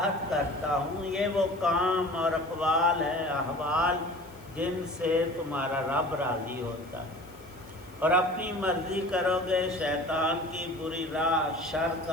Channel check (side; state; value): left; noise; hiss, 26 dB below the sound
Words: کرتا ہوں. یہ وہ کام اور اقوال ہے، احوال جن سے تمہارا رب راضی ہوتا ہے. اور اپنی مرضی کرو گے، شیطان کی بری راہ، شر